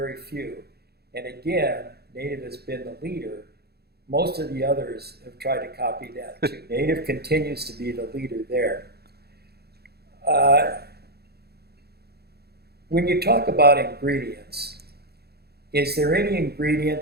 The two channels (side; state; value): left; late; 0.46 ms